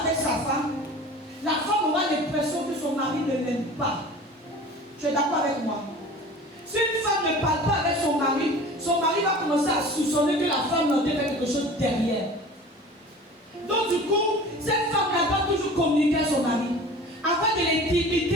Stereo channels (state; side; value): normal; both; correlation 0.41